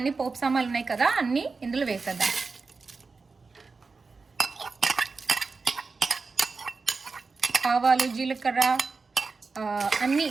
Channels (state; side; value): quieter; left; 4.3 dB